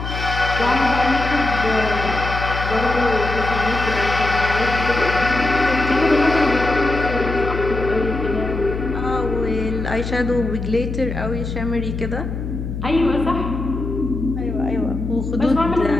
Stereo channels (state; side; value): noise; left; hum, 5 dB below the sound